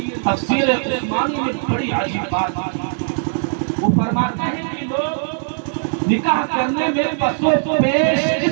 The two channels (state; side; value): silent; left; 66 dB below the other